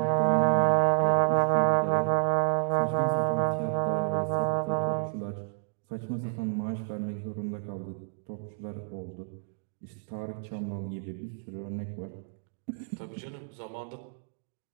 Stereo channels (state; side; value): silent; left; digital silence